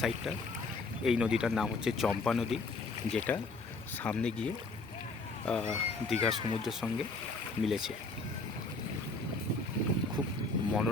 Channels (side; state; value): right; quieter; 3.5 dB